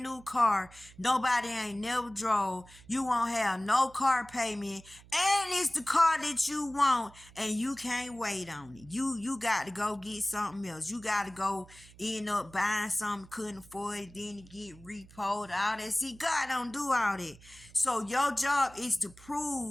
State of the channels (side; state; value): right; noise; hum, 22 dB below the sound